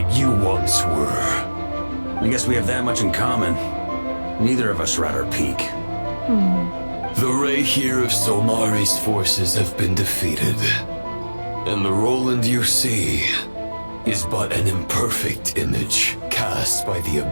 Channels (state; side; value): inverted; both; correlation -1.00